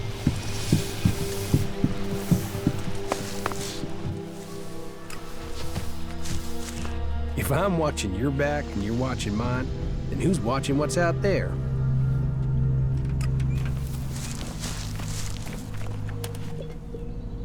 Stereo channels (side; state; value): both; identical; correlation 1.00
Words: If I'm watching your back and you're watching mine, then who's watching what's out there?